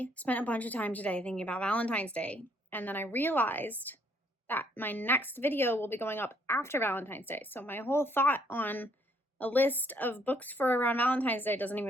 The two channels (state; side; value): normal; both; correlation 0.68